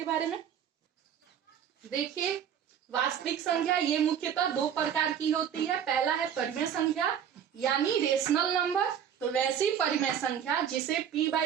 बारे में। देखिए वास्तविक संख्या ये मुख्यतः दो प्रकार की होती है। पहला है परिमेय संख्या यानी रेशनल नंबर। तो वैसी परिमेय संख्या जिसे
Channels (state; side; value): quieter; left; 8.8 dB